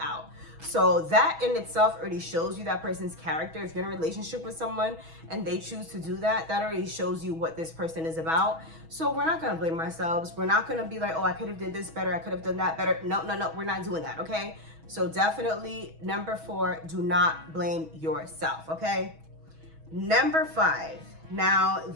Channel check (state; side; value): late; left; 6.2 ms